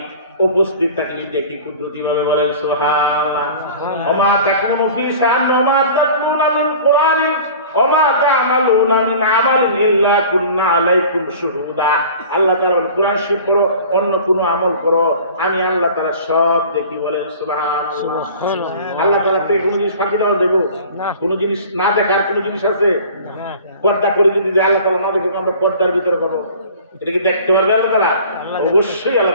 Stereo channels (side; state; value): both; inverted; correlation -0.43